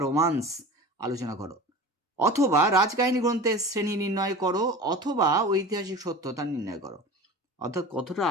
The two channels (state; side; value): normal; both; correlation 0.35